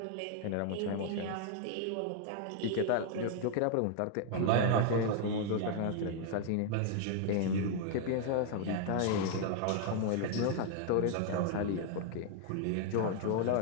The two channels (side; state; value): both; different; correlation 0.00